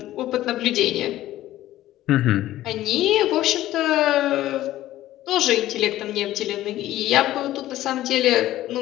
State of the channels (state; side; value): quieter; right; 14.5 dB